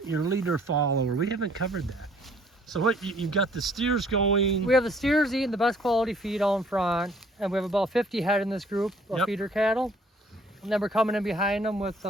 leader follower. We haven't covered that. So what you've got the steers going. We have the steers eating the best quality feed out in front, and we have about 50 head in this group of Yep. feeder cattle. And then we're coming in behind them with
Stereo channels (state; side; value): normal; both; correlation 0.59